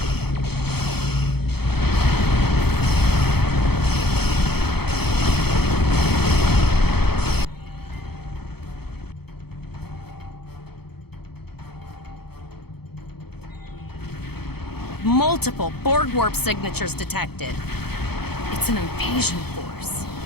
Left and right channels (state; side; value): late; right; 0.96 ms